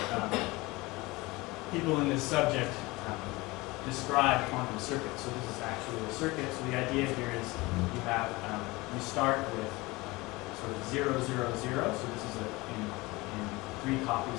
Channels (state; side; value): quieter; right; 22.3 dB